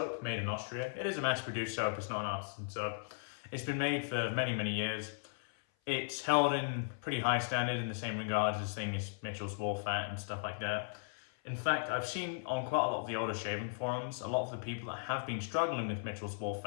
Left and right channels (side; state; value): right; silent; 53 dB below the other